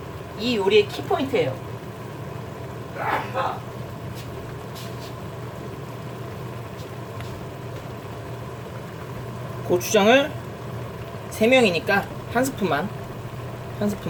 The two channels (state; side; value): identical; both; correlation 1.00